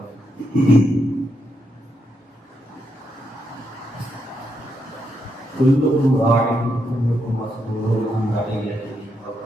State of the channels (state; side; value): normal; both; correlation 0.81